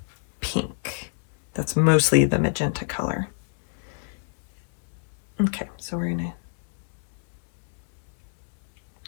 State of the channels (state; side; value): silent; right; 61 dB below the other